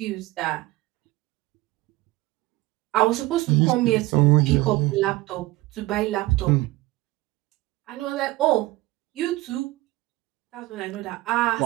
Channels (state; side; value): quieter; left; 19.1 dB